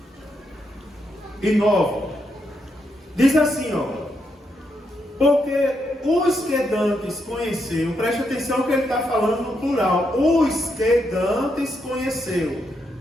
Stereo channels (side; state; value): both; normal; correlation 0.80